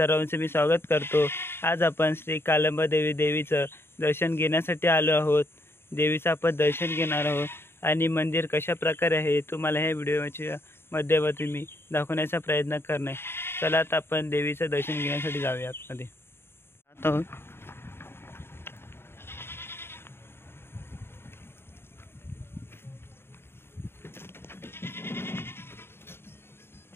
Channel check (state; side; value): late; right; 0.11 ms